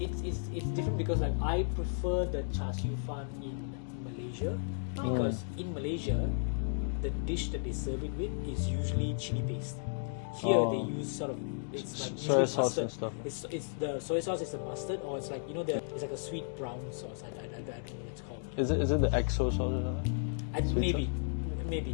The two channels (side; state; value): right; silent; digital silence